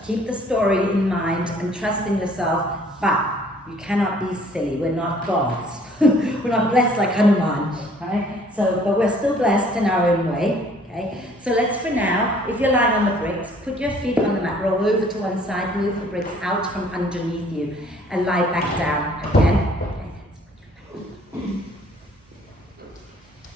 keep the story in mind and trust in yourself, but you cannot be silly. We're not gods. We're not blessed like Hanuman, right? So, but we're still blessed in our own way, okay? So let's, for now, if you're lying on the bricks, put your feet on the mat, roll over to one side, move the bricks out from underneath you, and lie back down again.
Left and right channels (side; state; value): both; normal; correlation 0.58